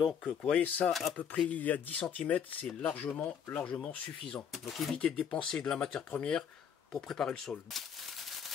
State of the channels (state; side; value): quieter; right; 7.7 dB